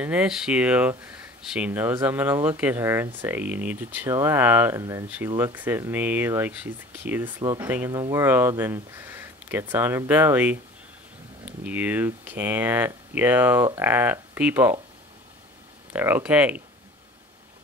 issue, she knows I'm gonna look at her and say, you need to chill out, and then she looks at me like she's the cutest little thing in the world and gets on her belly. You can't yell at people. They're okay.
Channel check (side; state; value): both; normal; correlation 0.44